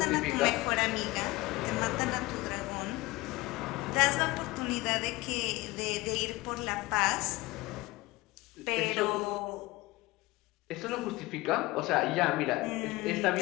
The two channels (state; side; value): quieter; right; 20.7 dB